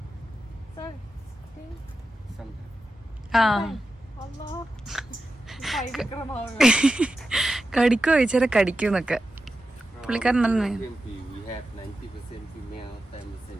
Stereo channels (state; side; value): normal; both; correlation 0.91